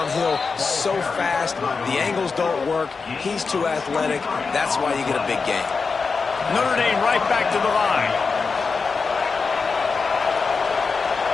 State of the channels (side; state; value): right; quieter; 4.8 dB